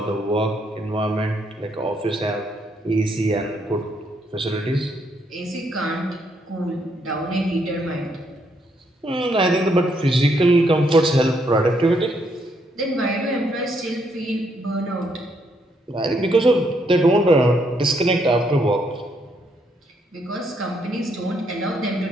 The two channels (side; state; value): both; normal; correlation 0.74